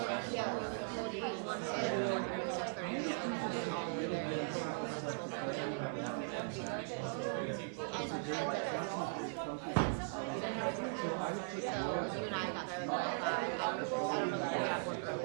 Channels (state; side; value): silent; left; 52 dB below the other